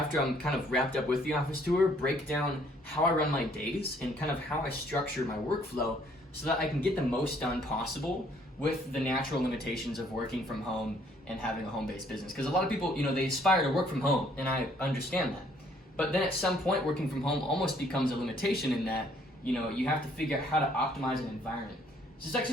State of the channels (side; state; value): both; normal; correlation 0.63